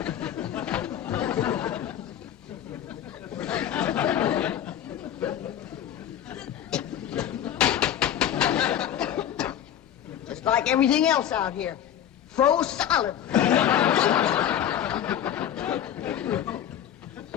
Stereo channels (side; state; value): right; quieter; 10.4 dB